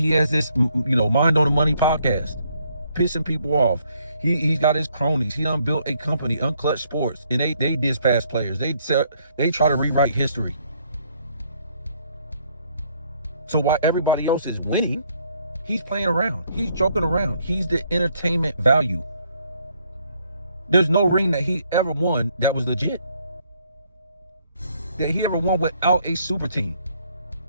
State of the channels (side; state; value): both; inverted; correlation -0.69